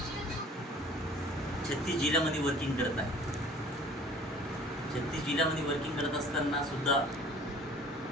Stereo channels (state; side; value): normal; both; correlation 0.49